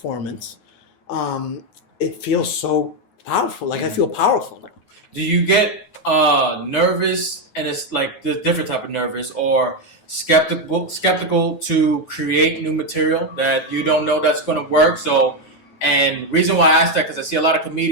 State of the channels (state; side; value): late; right; 9.4 ms